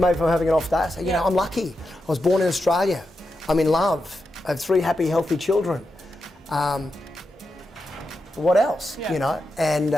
having an off day. I say, you know, I'm lucky. I was born in Australia. I'm in love. I have 3 happy, healthy children. What else? Yeah. You know,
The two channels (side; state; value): both; normal; correlation 0.87